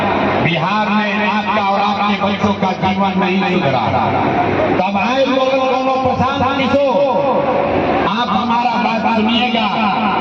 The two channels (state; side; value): identical; both; correlation 1.00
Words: बिहार में आपका और आपके बच्चों का जीवन नहीं सुधरा। तब आए दोनों प्रशांत किशोर, आप हमारा बात सुनिएगा,